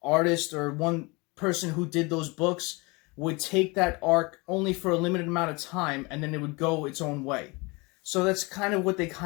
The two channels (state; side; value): quieter; right; 26.6 dB